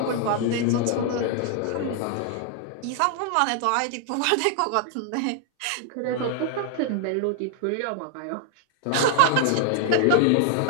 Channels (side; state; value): both; different; correlation 0.00